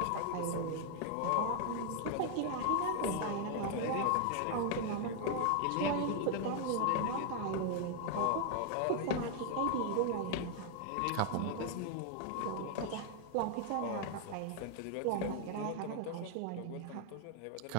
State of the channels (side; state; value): both; different; correlation 0.00